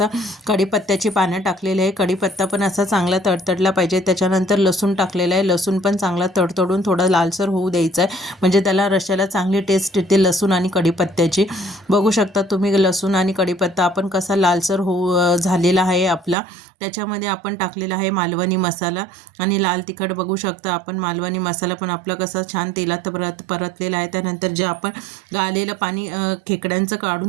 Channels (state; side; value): drops out; left; at 16.4 s